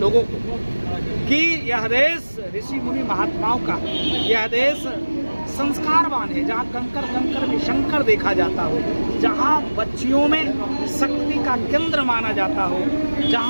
को कि यह देश ऋषि मुनि महात्माओं का, यह देश संस्कारवान है, जहाँ कंकर कंकर में शंकर देखा जाता हो, जहाँ बच्चियों में शक्ति का केंद्र माना जाता हो,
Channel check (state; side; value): inverted; both; correlation -1.00